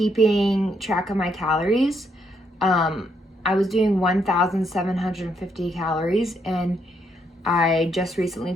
track of my calories. I was doing 1,750 calories, and I just recently,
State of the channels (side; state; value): both; normal; correlation 0.75